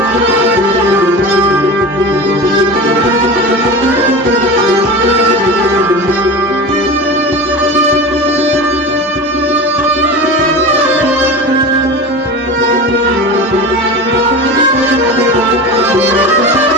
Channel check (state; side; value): normal; both; correlation 0.29